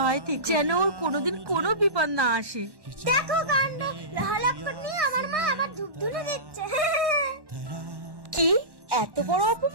থেকে, যেন ওর কোনোদিন কোনো বিপদ না আসে। দেখো কাণ্ড, লহলক্কর নিয়ে আমার মা আবার ধূপ ধুনে দিচ্ছে। কি এত বড়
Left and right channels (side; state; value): left; late; 1.1 ms